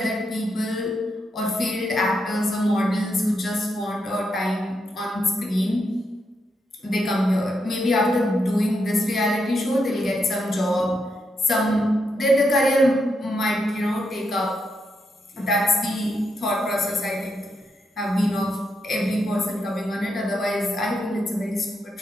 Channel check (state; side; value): normal; both; correlation 0.82